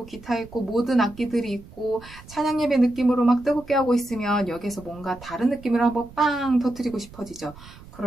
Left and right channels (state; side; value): noise; right; rumble, 20 dB below the sound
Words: 기타 있고 모든 악기들이 있고 찬양 예배 느낌으로 막 뜨겁게 하고 있으면 여기서 뭔가 다른 느낌으로 한번 빵 터뜨리고 싶어지죠.